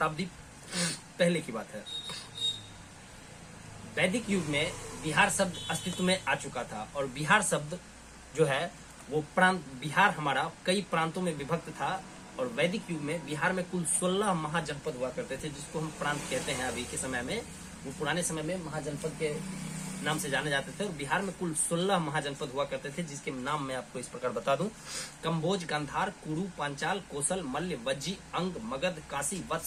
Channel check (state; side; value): identical; both; correlation 1.00